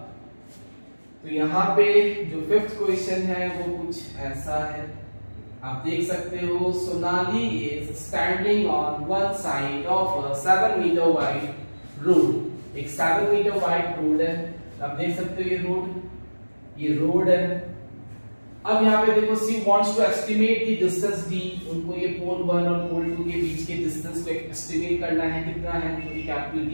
तो यहाँ पे जो 5th क्वेश्चन है वो कुछ ऐसा है, आप देख सकते हो। Sonali is standing on one side of a 7 metre wide road. एक 7 मीटर वाइड रोड है, आप देख सकते हो ये रोड है। अब यहाँ पे देखो she wants to estimate the distance D, उनको ये पोल 1 और पोल 2 के बीच के डिस्टेंस को एस्टिमेट करना है, कितना है, तो ये कैपिटल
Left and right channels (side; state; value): both; inverted; correlation -1.00